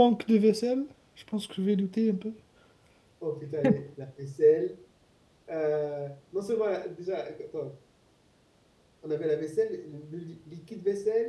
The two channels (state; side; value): identical; both; correlation 1.00